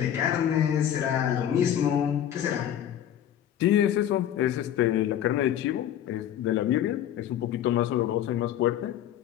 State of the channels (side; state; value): right; quieter; 10.7 dB